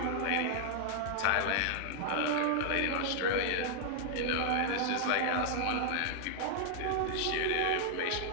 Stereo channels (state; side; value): different; both; correlation 0.00